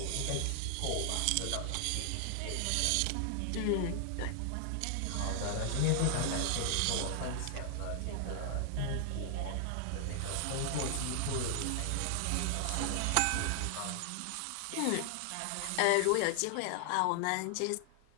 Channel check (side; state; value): both; different; correlation 0.00